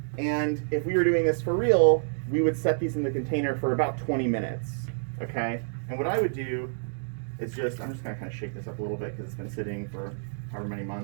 And if we were doing this for real, we would set these in the container for about 20 minutes, okay? And what I would do is I'm just gonna kind of shake this up a little bit because it's been sitting for however many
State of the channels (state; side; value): silent; left; digital silence